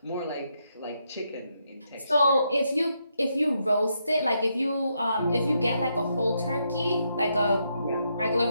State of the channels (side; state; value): both; inverted; correlation -0.79